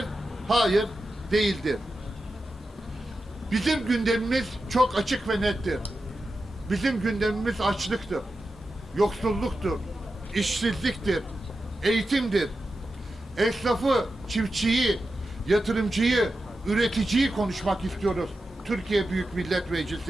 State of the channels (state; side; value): normal; both; correlation 0.91